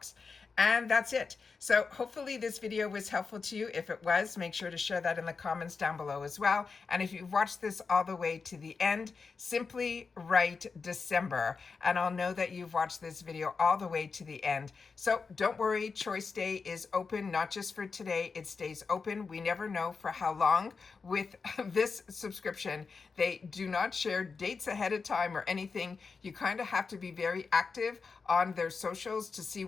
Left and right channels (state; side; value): quieter; right; 4.9 dB